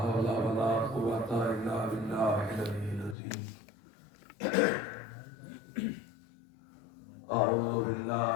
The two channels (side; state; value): right; drops out; at 3.2 s